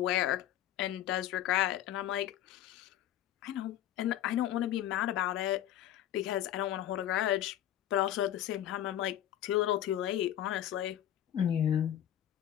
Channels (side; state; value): right; quieter; 11.9 dB